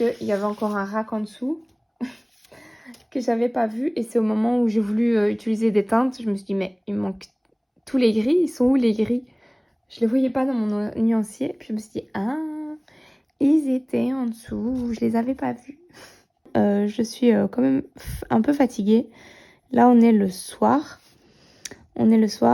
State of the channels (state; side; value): identical; both; correlation 1.00